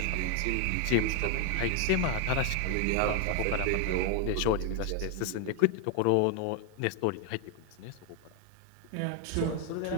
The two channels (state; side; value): different; both; correlation 0.01